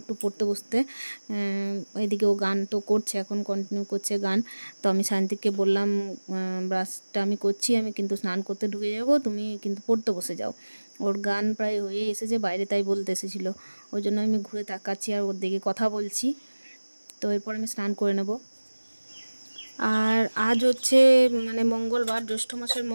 পড়তে বসতে। এদিকে ও গান তো করছে, এখন কন্টিনিউ করছে গান। তো আমি সায়ন্তিককে বললাম ব্রাশটা আমি করছি, আমি কিন্তু স্নান করতে ঢুকে যাব, তুমি কিন্তু পড়তে বসে যাও। ওর গান প্রায় হয়ে এসেছে বাইরে, তাই বলতে এসেছিলো, ওই জন্য আমি ঘুরে তাকাচ্ছি আর ওর দিকে কথা বলছি। তো এরপর আমি স্নান করে নেব। আর আজ হচ্ছে মানে মঙ্গলবার, জ্যৈষ্ঠ মাসের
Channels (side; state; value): both; inverted; correlation -1.00